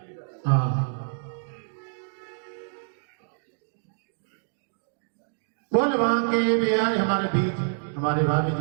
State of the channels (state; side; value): silent; left; digital silence